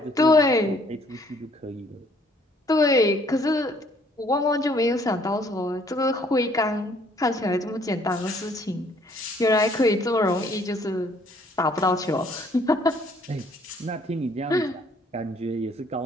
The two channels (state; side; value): normal; both; correlation 0.62